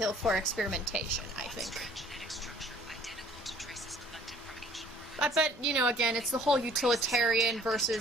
for experimentation, I think. Genetic structure identical to traces collected from ancient ruins. But, you know, again, it's the whole utilitarian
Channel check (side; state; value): both; normal; correlation 0.55